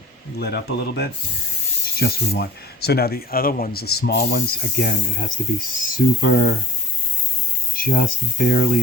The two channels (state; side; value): normal; both; correlation 0.43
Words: lit up a little bit. It's just what we want. So now the other ones, the small ones, again, it has to be super, just